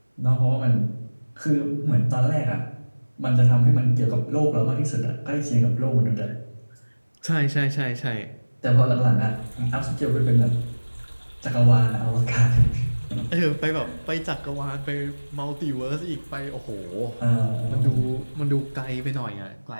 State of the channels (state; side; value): inverted; both; correlation -1.00